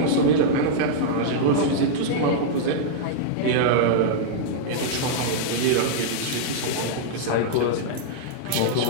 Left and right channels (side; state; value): both; different; correlation -0.02